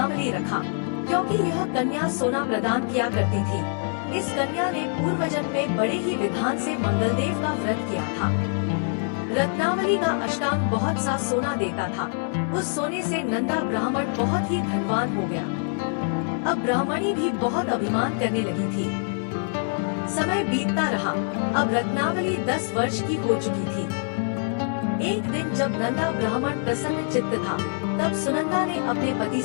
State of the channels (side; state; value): right; silent; 59 dB below the other